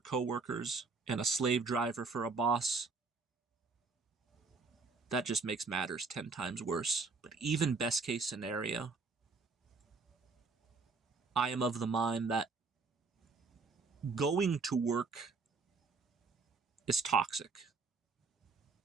and a slave driver for a boss, that just makes matters 10 times worse. But even best case scenario, I am of the mind that going to work is toxic.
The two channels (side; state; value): left; quieter; 4.3 dB